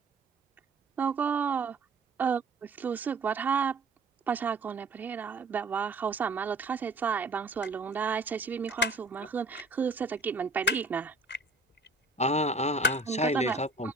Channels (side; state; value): left; quieter; 3.0 dB